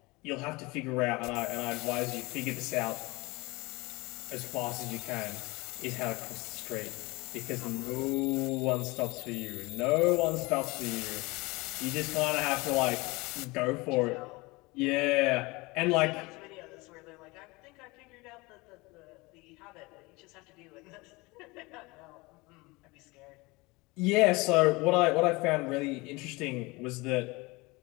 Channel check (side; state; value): right; quieter; 24.0 dB